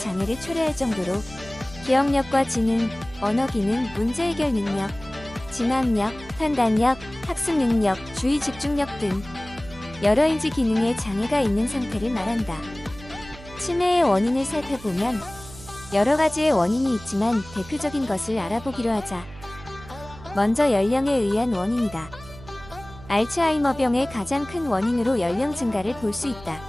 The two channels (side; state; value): right; noise; hum, 18 dB below the sound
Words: 초래할 정도로 기억력과 지능, 언어기능, 문제해결 능력, 진학력, 판단력, 학습능력, 주의 집중력 등 여러 인지 기능에 장애가 있는 상태를 말한다. 치매의 원인을 살펴보면 여러 가지의 원인이 있지만 대표적인 것을 알아보기로 하자. 먼저 연령에 의한 원인이다. 알츠하이머병의 가장 큰 원인으로 연령 증가를 볼 수 있다.